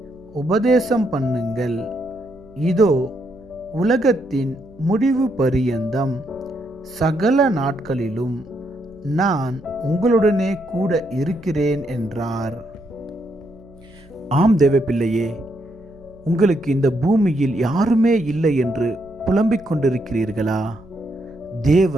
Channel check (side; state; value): right; noise; hum, 26 dB below the sound